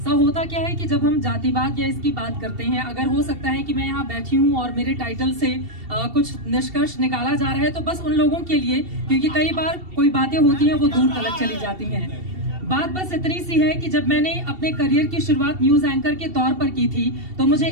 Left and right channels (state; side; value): late; left; 2.7 ms